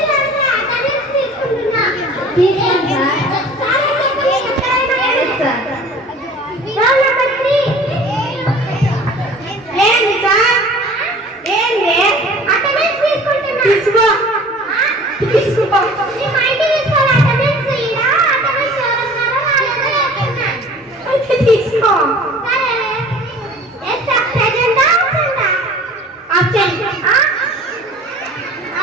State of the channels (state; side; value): normal; both; correlation 0.46